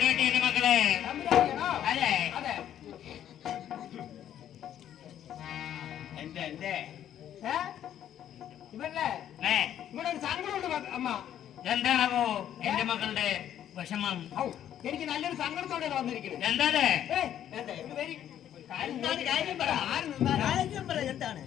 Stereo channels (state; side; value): quieter; right; 10.7 dB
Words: മക്കളെ. അതെ, എന്റെ ഇവിടെ ഒരു സങ്കടമുണ്ട് അമ്മ. എന്താണോ എന്റെ മക്കളുടെ വിഷമം? എനിക്ക് നല്ലൊരു സങ്കടത്തോടെ വന്നിരിക്കുന്നത്. എന്താണ് കാര്യം പറ. എന്താണ്